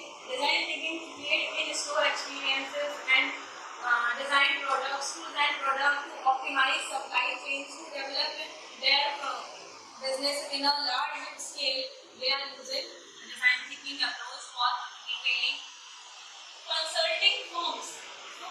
design thinking to create in-store experiences and design product to optimize supply chains, to develop their business in a large scale. They are using design thinking approach for retailing. Consulting firms.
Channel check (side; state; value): both; identical; correlation 1.00